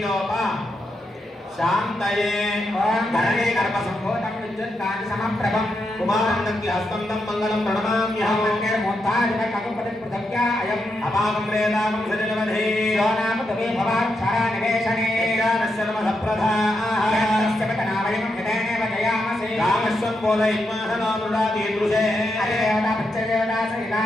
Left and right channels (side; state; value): both; normal; correlation 0.84